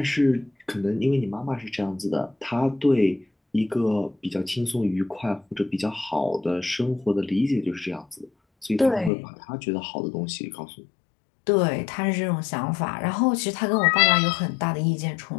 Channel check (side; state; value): right; drops out; at 9.1 s